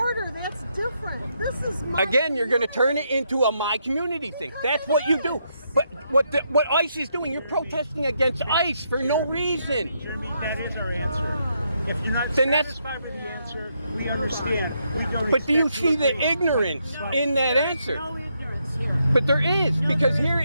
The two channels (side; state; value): both; inverted; correlation -0.78